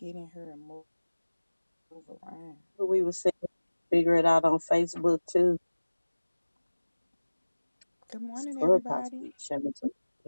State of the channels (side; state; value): both; inverted; correlation -1.00